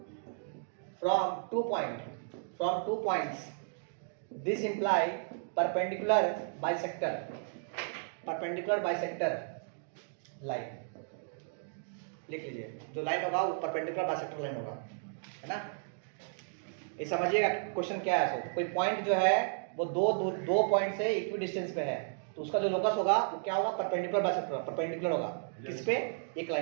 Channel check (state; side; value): silent; left; digital silence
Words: from 2 points. This imply perpendicular bisector line। लिख लीजिए, जो लाइन होगा वो परपेंडिकुलर बाइसेक्टर लाइन होगा, है ना? ये समझिएगा क्वेश्चन क्या है। सो कोई पॉइंट जो है वो दो पॉइंट से इक्विडिस्टेंस पे है, तो उसका जो लोकस होगा वो क्या होगा? परपेंडिकुलर बाइसेक्टर, परपेंडिकुलर होगा। किस पे? एक